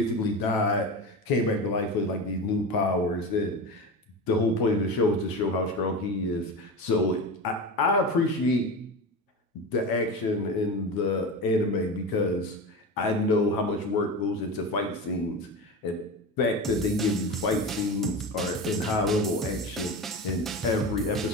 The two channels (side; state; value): both; normal; correlation 0.25